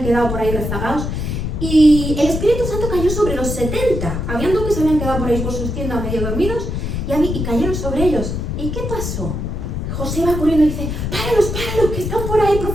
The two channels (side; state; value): left; noise; rumble, 3 dB below the sound